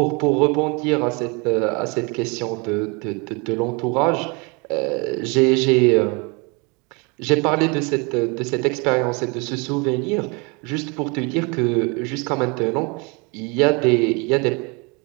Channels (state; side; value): quieter; left; 30.2 dB